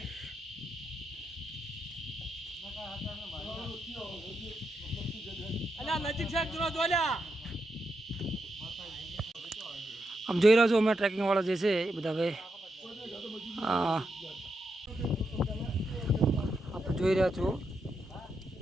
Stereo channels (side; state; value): both; normal; correlation 0.84